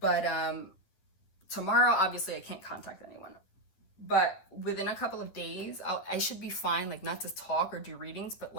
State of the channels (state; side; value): late; right; 10 ms